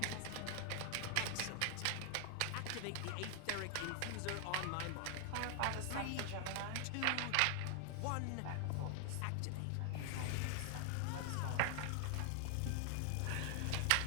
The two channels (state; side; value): different; both; correlation 0.00